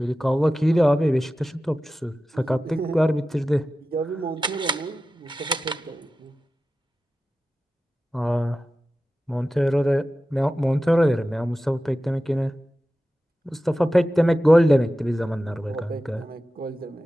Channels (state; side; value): normal; both; correlation 0.94